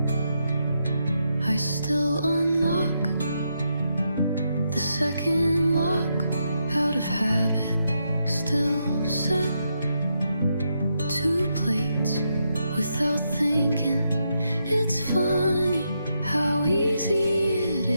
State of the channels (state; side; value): inverted; both; correlation -0.81